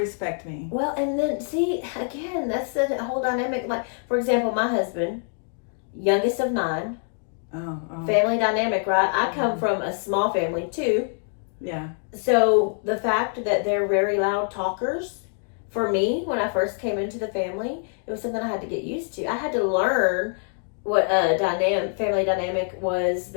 me. Well, and then see, again, that's the whole dynamic. Like, for example, my husband, youngest of 9, family dynamic, right? I come from a small family too. Yeah. So the fact that they're very loud talkers, for me, when I first came into the family, it was something I had to get used to. I had to learn what a family dynamic was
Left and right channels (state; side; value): silent; right; 56 dB below the other